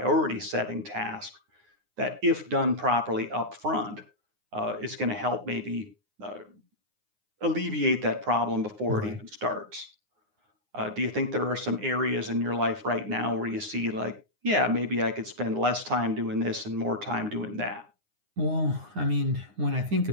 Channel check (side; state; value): left; late; 9.6 ms